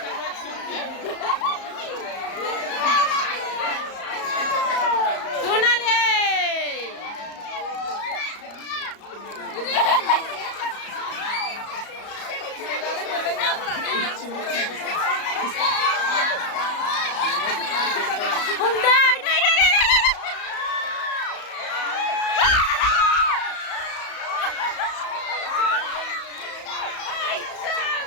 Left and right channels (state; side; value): late; right; 34 ms